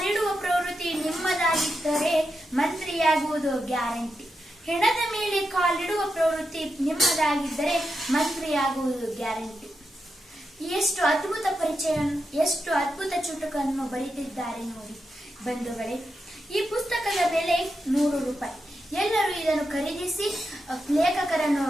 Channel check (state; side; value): normal; both; correlation 0.87